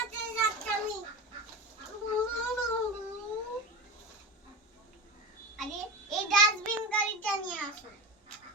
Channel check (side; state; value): both; normal; correlation 0.24